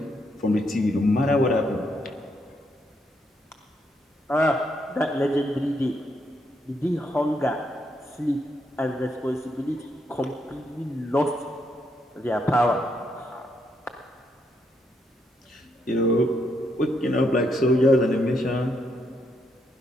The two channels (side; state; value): both; normal; correlation 0.77